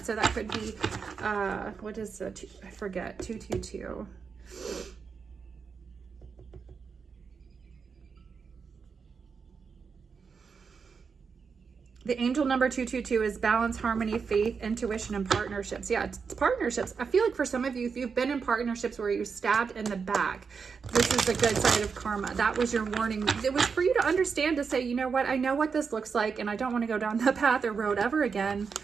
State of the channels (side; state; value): left; quieter; 5.7 dB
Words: So that could be, what is the, I forget, 222. The angel number 222 is balance, harmony, faith, intuition, and partnerships. Yeah, it's partnerships. I feel like for some of you, if you've been in partnerships where you're stabbed in the back, this is the good side of karma. That was your warning. It was for you to understand, to say, you know what, I know what this looks like, and I don't want to go down that path or road ever again.